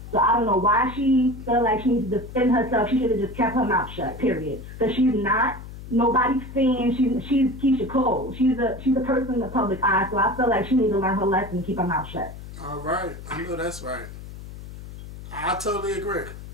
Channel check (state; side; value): noise; left; hum, 13 dB below the sound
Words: So I don't know why she felt like she needs to defend herself. She should have just kept her mouth shut, period. Because she's not nobody's saying she's Keyshia Cole. She's a person in the public eye, so I feel like she needs to learn her lesson and keep her mouth shut. All right. I know that's right. I totally agree.